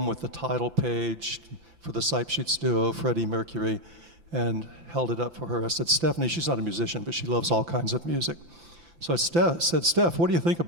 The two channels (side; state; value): left; late; 5.9 ms